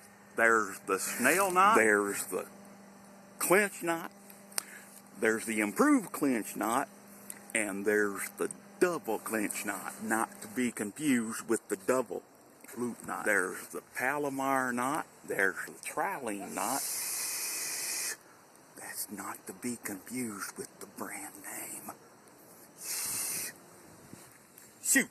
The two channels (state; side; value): identical; both; correlation 1.00